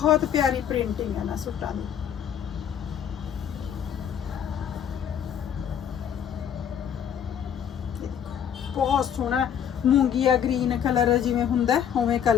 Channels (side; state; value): right; quieter; 8.8 dB